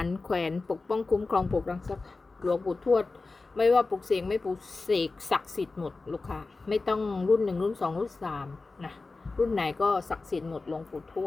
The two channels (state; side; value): quieter; right; 3.7 dB